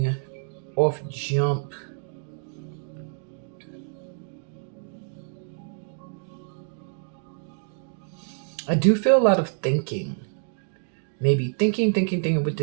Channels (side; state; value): left; silent; 60 dB below the other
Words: off jump, I do feel a lot of thinking. Maybe thinking with